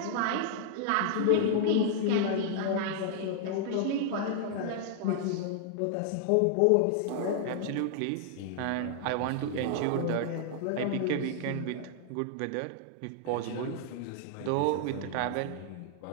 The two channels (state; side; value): different; both; correlation -0.01